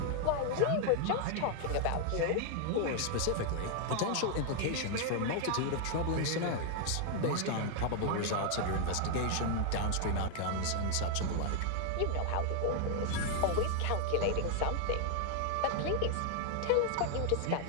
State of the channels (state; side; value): different; both; correlation 0.00